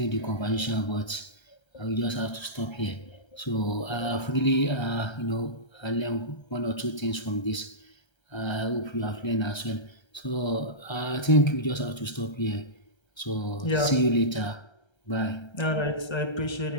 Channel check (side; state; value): right; late; 1.3 ms